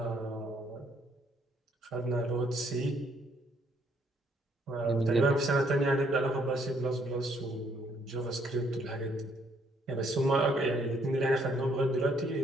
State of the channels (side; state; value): both; normal; correlation 0.68